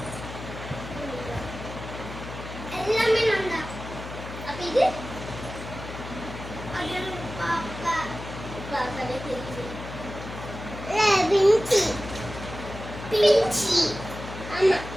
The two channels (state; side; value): noise; left; hum, 10 dB below the sound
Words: எல்லாமே நான் தான். அப்ப இது அது பாப்பா பாப்பாவே தெரியுது. பிஞ்சி பிஞ்சி ஆமா